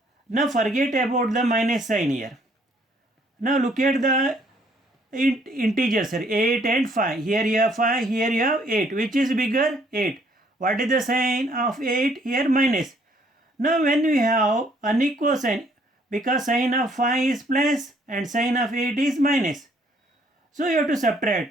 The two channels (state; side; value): normal; both; correlation 0.65